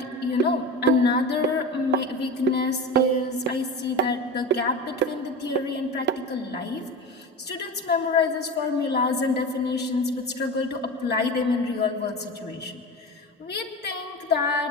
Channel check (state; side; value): normal; both; correlation 0.28